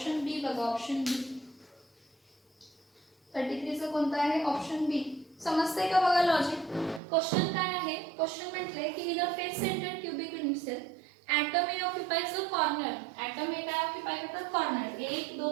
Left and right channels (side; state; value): left; drops out; at 7.0 s